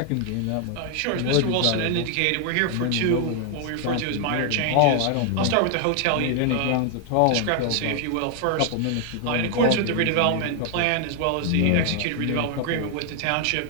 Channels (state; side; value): different; both; correlation 0.00